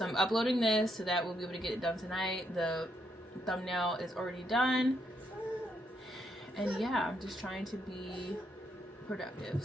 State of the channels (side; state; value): both; normal; correlation 0.77